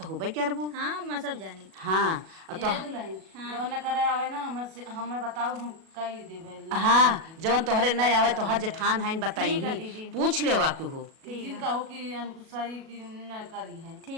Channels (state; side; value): late; left; 37 ms